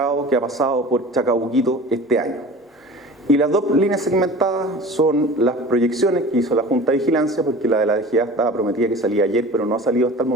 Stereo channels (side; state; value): both; normal; correlation 0.39